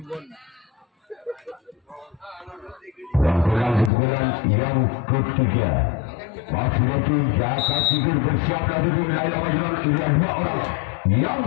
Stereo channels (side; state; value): right; drops out; at 3.9 s